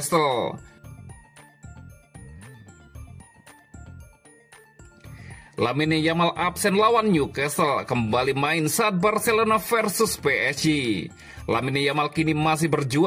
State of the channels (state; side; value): identical; both; correlation 1.00